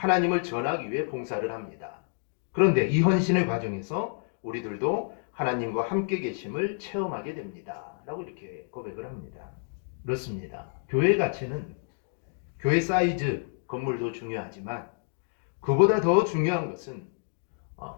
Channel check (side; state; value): right; silent; 59 dB below the other